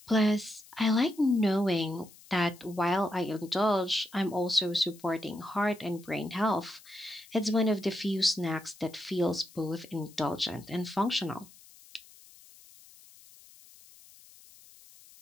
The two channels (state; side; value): noise; left; hiss, 23 dB below the sound